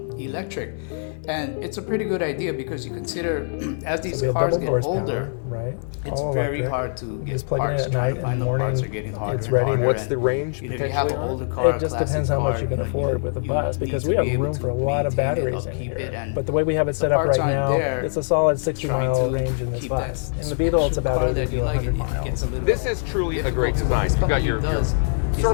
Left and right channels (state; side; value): silent; right; 62 dB below the other